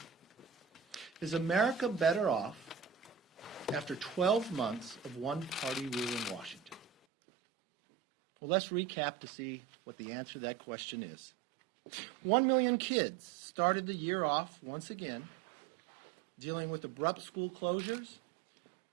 Is America better off after 12 months of one-party rule in Washington? Well, let's recap to see what the answer to that question is. 1 million kids started the year off once again, dealing with abrupt school closures,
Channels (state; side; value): drops out; left; at 6.9 s